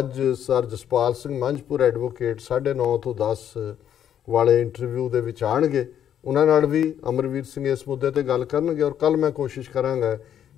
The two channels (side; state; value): right; quieter; 9.8 dB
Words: ਸਰ ਜਸਪਾਲ ਸਿੰਘ ਮੰਝਪੁਰ ਐਡਵੋਕੇਟ 9:30 ਤੋਂ 10 ਵਾਲੇ ਇੰਟਰਵਿਊ ਦੇ ਵਿੱਚ ਆਣਗੇ, ਉਹਨਾਂ ਨਾਲ ਵੀ ਅਮਰਵੀਰ ਸਿੰਘ ਇਸ ਮੁੱਦੇ ਤੇ ਗੱਲ ਕਰਨਗੇ। ਔਰ ਕੱਲ ਮੈਂ ਕੋਸ਼ਿਸ਼ ਕਰਾਂਗਾ